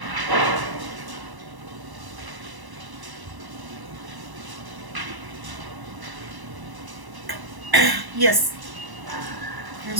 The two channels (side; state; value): left; late; 1.0 ms